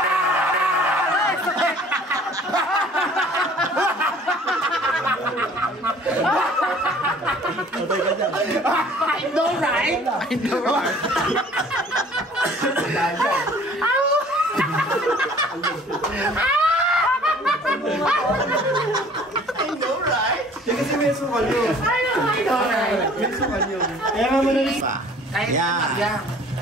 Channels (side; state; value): both; normal; correlation 0.52